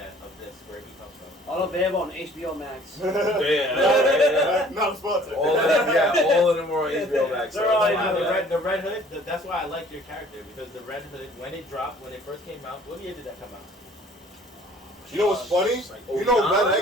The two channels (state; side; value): normal; both; correlation 0.53